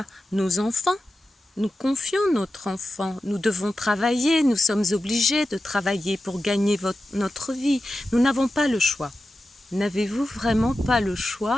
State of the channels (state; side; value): normal; both; correlation 0.92